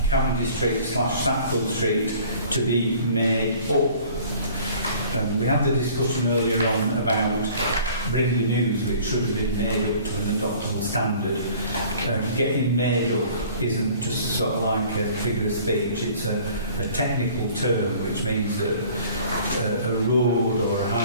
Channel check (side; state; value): both; inverted; correlation -0.50